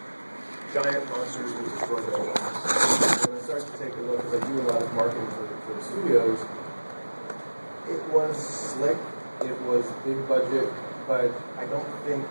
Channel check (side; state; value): both; inverted; correlation -1.00